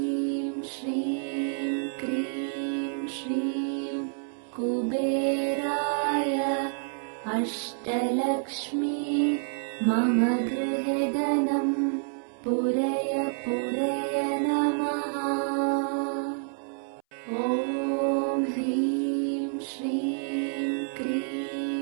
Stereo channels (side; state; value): left; silent; 59 dB below the other